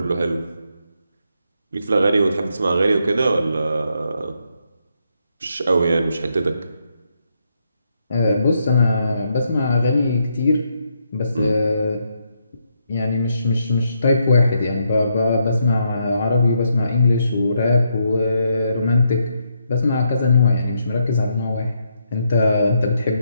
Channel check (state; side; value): inverted; both; correlation -0.78